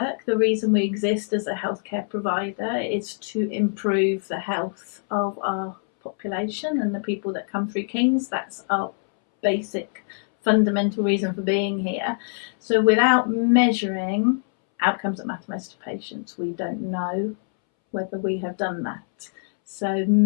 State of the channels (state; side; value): silent; right; 62 dB below the other